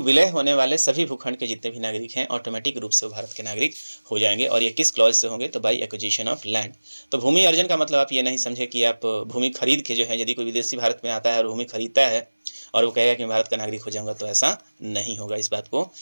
होने वाले सभी भूखंड के जितने भी नागरिक हैं ऑटोमेटिक रूप से वो भारत के नागरिक हो जाएंगे। और ये किस क्लॉज से होंगे? तो बाई एक्विजिशन ऑफ लैंड। तो भूमि अर्जन का मतलब आप ये नहीं समझे कि आप भूमि खरीद के जो है, यदि कोई विदेशी भारत में आता है और भूमि खरीदता है और वो कहेगा कि मैं भारत का नागरिक हो जाऊंगा, तो ऐसा नहीं होगा। इस बात को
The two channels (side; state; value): both; inverted; correlation -1.00